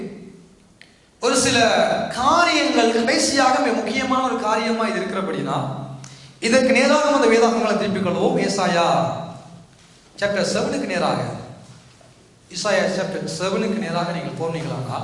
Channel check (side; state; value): both; identical; correlation 1.00